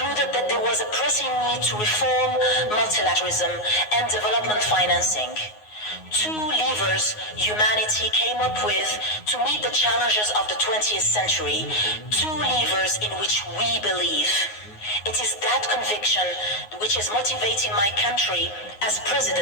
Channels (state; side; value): late; right; 9.5 ms